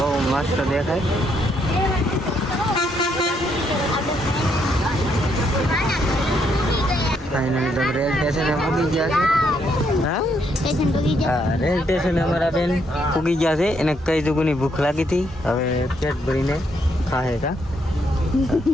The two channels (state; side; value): normal; both; correlation 0.74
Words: મસ્ત દેખાય. ફાઇનલી તો રેલ સ્ટેશને પૂગી ગયા છે. હા રેલ સ્ટેશને અમારા બેન પૂગી ગયા છે. એને કઈ દુગુની ભૂખ લાગી હતી. હવે પેટ ભરીને ખાહે કા.